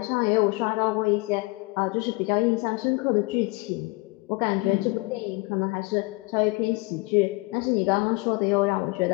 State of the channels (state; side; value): quieter; right; 24.6 dB